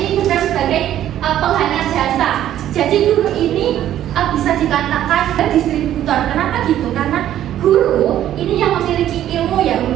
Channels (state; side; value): quieter; left; 11.8 dB